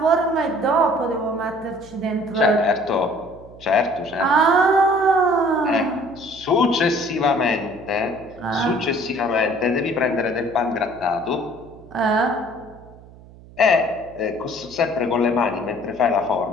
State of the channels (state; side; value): noise; right; hum, 21 dB below the sound